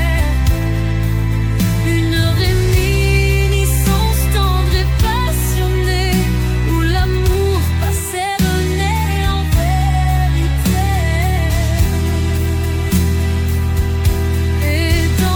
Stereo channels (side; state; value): both; identical; correlation 1.00